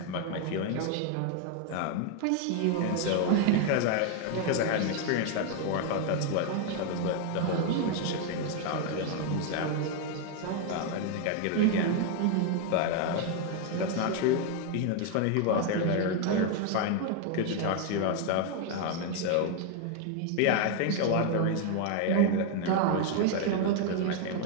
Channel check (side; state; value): both; different; correlation 0.01